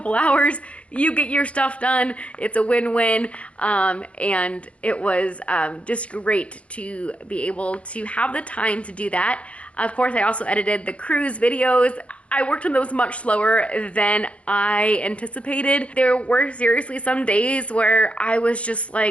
hours. You get your stuff done. It's a win-win. And it was just great to be able to have the time to do that. Of course, I also edited the cruise videos. I worked on those much slower than I anticipated. There were seriously some days where I was just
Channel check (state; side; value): late; right; 0.062 ms